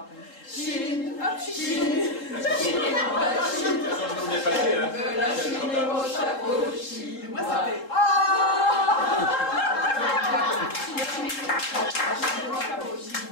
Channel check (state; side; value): late; right; 3.7 ms